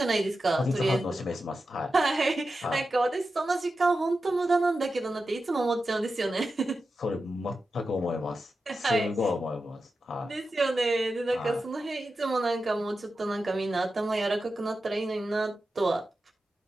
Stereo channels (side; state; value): both; normal; correlation 0.91